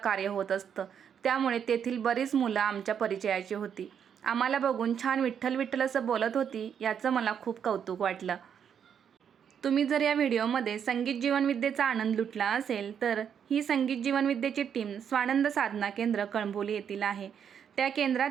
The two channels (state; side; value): quieter; left; 8.0 dB